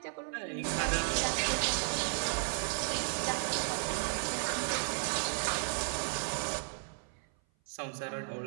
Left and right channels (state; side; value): silent; left; 55 dB below the other